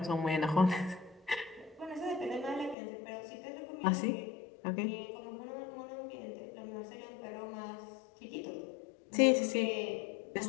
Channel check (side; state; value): right; drops out; at 2.8 s